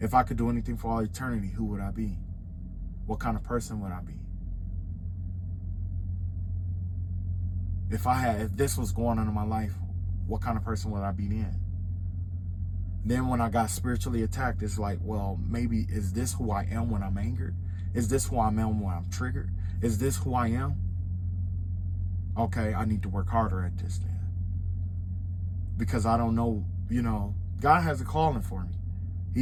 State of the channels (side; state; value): both; identical; correlation 1.00